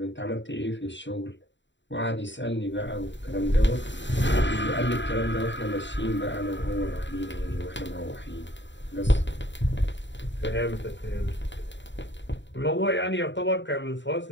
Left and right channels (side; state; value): right; late; 0.53 ms